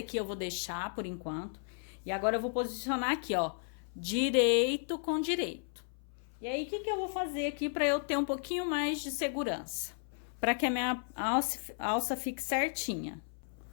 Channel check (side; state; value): right; silent; 55 dB below the other